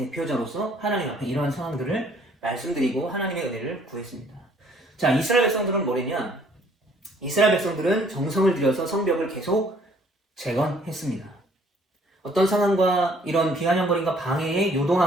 하나님 앞에 이러한 상황들을 말씀드리고 하나님의 은혜를 구했습니다. 자, 이스라엘 백성들은 뭐랬냐? 이스라엘 백성들은 정성을 들여서 성벽을 계속 재건했습니다. 어떤 상황과 이런 비아냥거림과 방해에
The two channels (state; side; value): normal; both; correlation 0.60